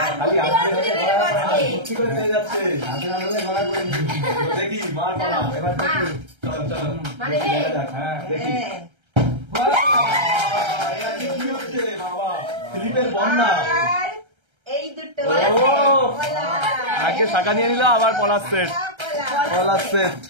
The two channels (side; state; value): left; late; 1.3 ms